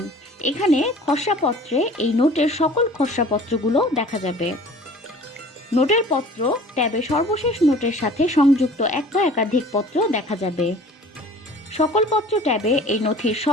এখানে খসড়া পত্রে এই নোটের সকল খসড়া পত্রগুলো দেখা যাবে। নোটের পত্র ট্যাবে সর্বশেষ নোটের সাথে সংযুক্ত এক বা একাধিক পত্র দেখা যাবে। সকল পত্র ট্যাবে এই নথির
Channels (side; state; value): both; normal; correlation 0.47